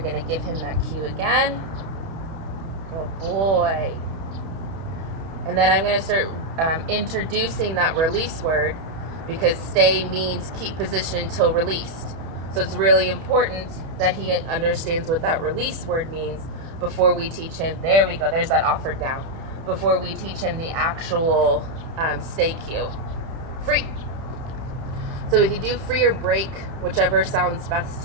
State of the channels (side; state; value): left; late; 31 ms